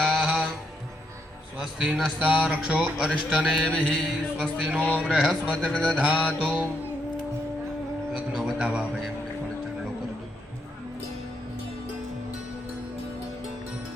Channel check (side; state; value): both; normal; correlation 0.77